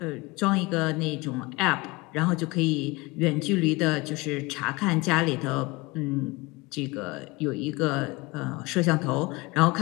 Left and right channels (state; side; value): quieter; right; 23.6 dB